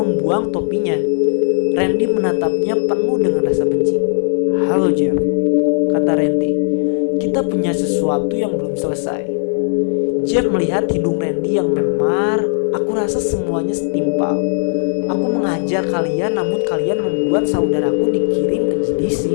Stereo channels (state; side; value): silent; right; digital silence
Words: topinya. Randy menatapnya penuh dengan rasa benci. "Halo Jeff," kata Randy. "Kita punya sesuatu yang belum selesai." Jeff melihat hidung Randy yang memar. "Aku rasa semuanya setimpal. Aku mengajar kalian, namun kalian membuat saudaraku dikirim ke GDC."